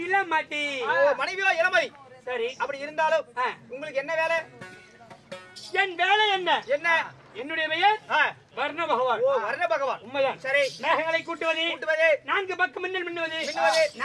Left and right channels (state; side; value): identical; both; correlation 1.00